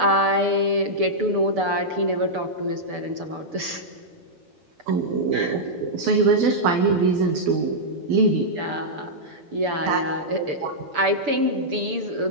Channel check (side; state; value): left; late; 6.9 ms